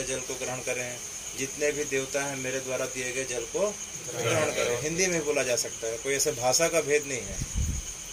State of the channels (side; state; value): both; identical; correlation 1.00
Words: जल को ग्रहण करें। जितने भी देवता हैं मेरे द्वारा दिए गए जल को ग्रहण करें। हिंदी में बोला जा सकता है, कोई ऐसे भाषा का भेद नहीं है,